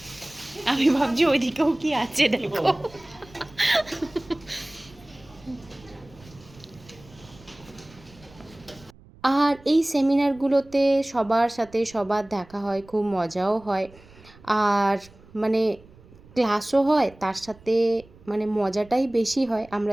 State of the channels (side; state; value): right; noise; rumble, 24 dB below the sound